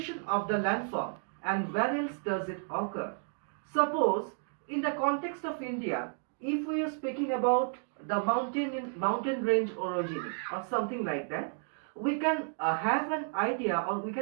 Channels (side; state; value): left; silent; 56 dB below the other